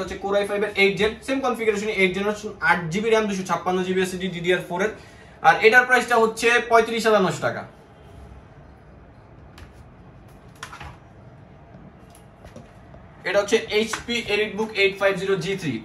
হচ্ছে Core i5 এর 8 gen, same configuration 8 generation 8GB RAM 256GB SSD DDR4 এর। আর এটার প্রাইসটা হচ্ছে 35,900 টাকা। এটা হচ্ছে HP EliteBook 850G3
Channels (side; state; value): both; identical; correlation 1.00